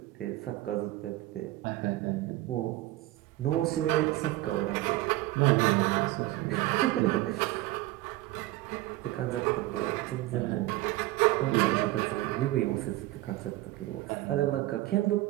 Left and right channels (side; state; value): left; quieter; 17.5 dB